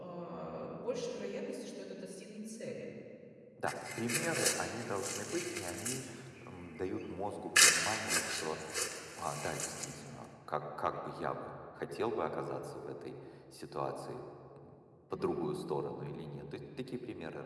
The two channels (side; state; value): both; identical; correlation 1.00